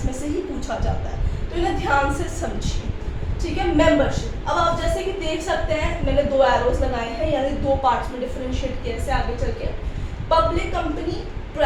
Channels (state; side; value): identical; both; correlation 1.00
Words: में से ही पूछा जाता है, तो इन्हें ध्यान से समझिए. ठीक है. मेंबरशिप. अब आप जैसे कि देख सकते हैं मैंने 2 एरोज लगाए हैं, यानी 2 पार्ट्स में डिफरेंशिएट किया से आगे चल के. Public company,